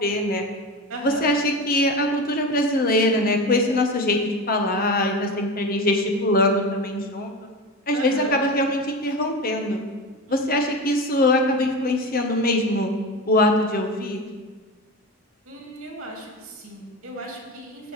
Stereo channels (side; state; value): both; normal; correlation 0.25